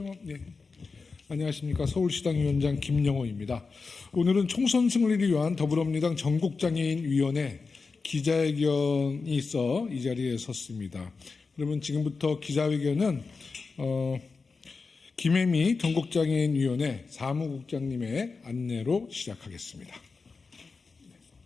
안녕하십니까. 서울시당 위원장 김영호입니다. 오늘은 총선 승리를 위한 더불어민주당 전국장애인위원회 기자회견이 있어 이 자리에 섰습니다. 그러면 지금부터 기자회견은 김혜미 전국장애인위원회 사무국장님의 안내로 시작하겠습니다.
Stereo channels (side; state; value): right; quieter; 4.5 dB